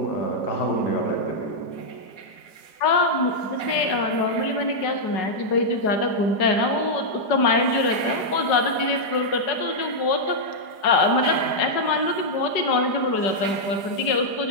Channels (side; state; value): right; late; 4.9 ms